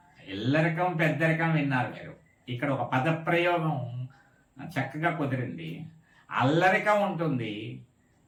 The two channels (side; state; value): both; identical; correlation 1.00